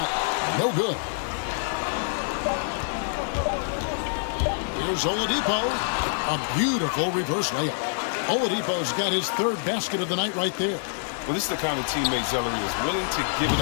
no good. Here's Oladipo. A beautiful reverse layup. Oladipo's got his 3rd basket of the night right there. Well, this is the kind of teammate Zellery is willing to give it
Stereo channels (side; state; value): right; silent; digital silence